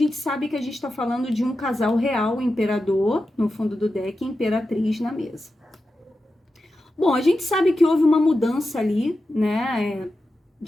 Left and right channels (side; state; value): both; normal; correlation 0.91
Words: sabe que a gente está falando de um casal real, imperador, no fundo do deck, e imperatriz na mesa. Bom, a gente sabe que houve uma mudança ali, né,